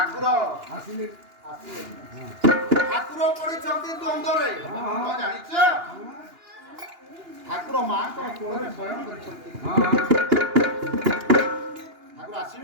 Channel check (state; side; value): late; left; 2.9 ms